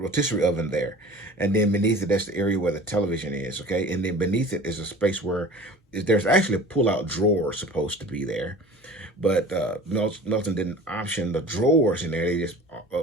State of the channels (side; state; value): both; normal; correlation 0.41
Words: oven there, and then beneath it, that's the area where the television is. Okay, and then beneath it is a space where there's actually a pull-out drawer supposed to be there. But Melton didn't option the drawers in there. They